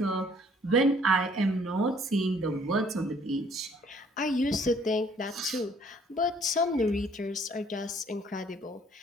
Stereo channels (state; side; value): normal; both; correlation 0.60